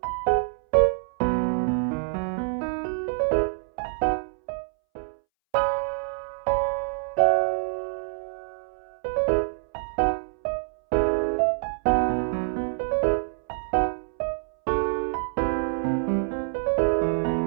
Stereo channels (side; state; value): left; silent; 61 dB below the other